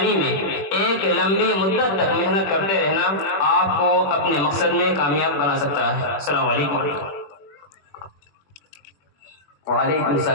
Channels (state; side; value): late; right; 21 ms